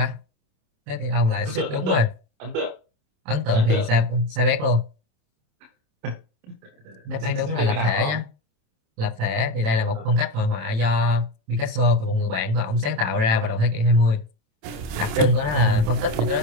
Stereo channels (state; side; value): late; left; 27 ms